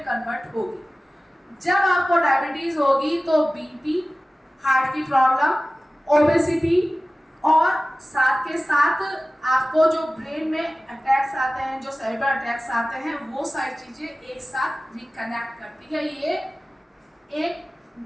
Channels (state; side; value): normal; both; correlation 0.97